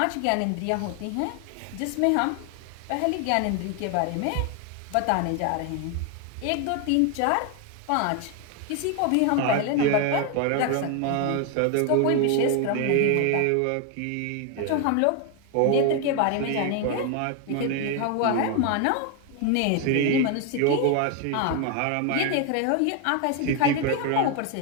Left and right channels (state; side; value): different; both; correlation 0.01